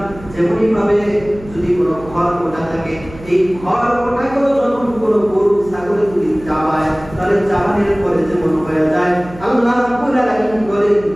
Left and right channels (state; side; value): noise; right; hum, 18 dB below the sound